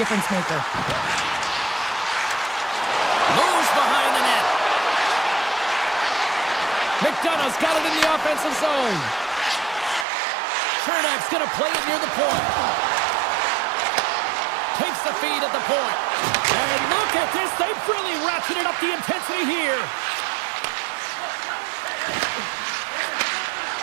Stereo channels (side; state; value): left; drops out; at 10.1 s